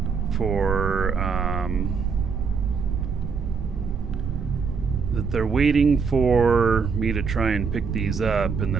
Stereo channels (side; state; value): left; quieter; 5.6 dB